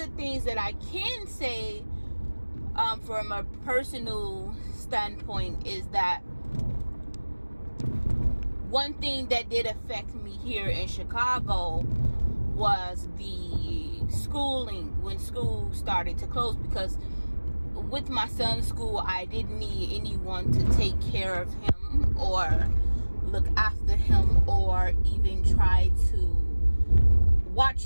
things that I can say from a personal standpoint is that one thing that did affect me here in Chicago was the schooling, when school started to close, because with my son's school, I didn't need anyone to take care of him or look after him or even try to watch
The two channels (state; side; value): inverted; both; correlation -1.00